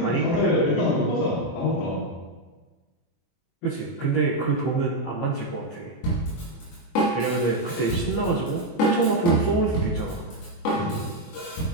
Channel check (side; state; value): right; late; 23 ms